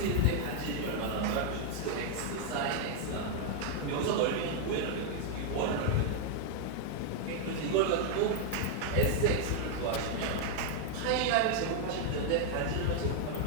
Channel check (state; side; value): different; both; correlation 0.00